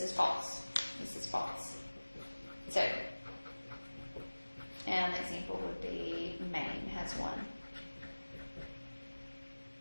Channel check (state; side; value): inverted; both; correlation -1.00